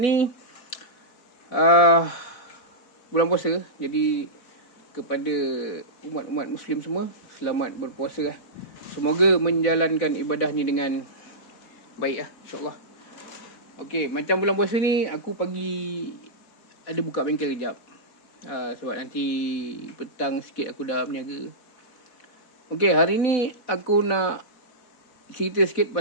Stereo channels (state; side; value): late; right; 4.0 ms